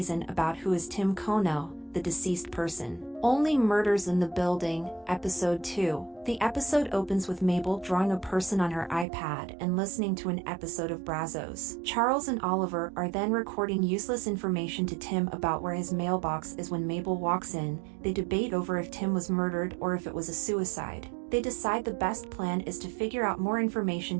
about who is Tim Kono, the deceased person. Only Murders in the Building, Episode 2. The episode opens with Mabel drawing a person on her iPad and listening to an episode of Brazos. Charles and Oliver are then recording useless information to Tim about where his mailbox is. When Mabel walks in, they debate over if Tim was murdered or if it was a suicide. They decide the best plan is to figure out more information,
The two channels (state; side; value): drops out; left; at 9.1 s